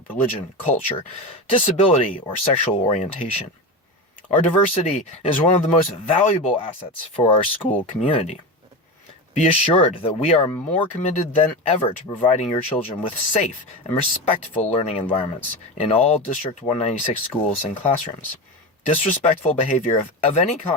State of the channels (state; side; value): normal; both; correlation 0.22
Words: religion, culture, disability, or sexual orientation. Our diversity is one of the most valuable assets for our school community. Be assured that we are more committed than ever to providing your children with safe and respectful learning environments in all District 196 schools and classrooms. Disrespectful behavior of any